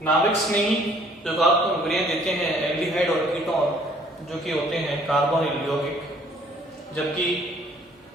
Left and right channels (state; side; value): normal; both; correlation 0.59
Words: नाभिक स्नेही योगात्मक अभिक्रियाएं देते हैं एल्डिहाइड और कीटोन जो कि होते हैं कार्बोनिल यौगिक, जबकि